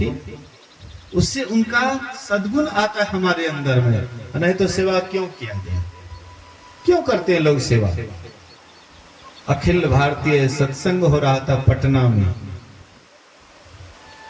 उससे उनका सद्गुण आता है हमारे अंदर में। नहीं तो सेवा क्यों किया गया, क्यों करते हैं लोग सेवा। अखिल भारतीय सत्संग हो रहा था पटना में,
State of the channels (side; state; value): both; identical; correlation 1.00